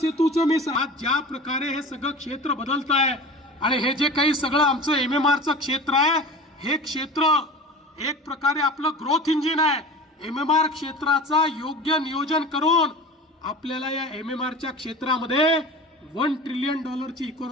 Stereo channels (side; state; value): both; normal; correlation 0.36